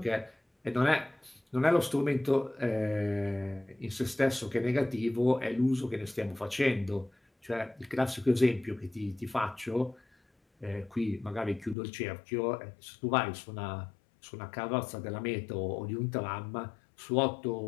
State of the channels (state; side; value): drops out; right; at 11.8 s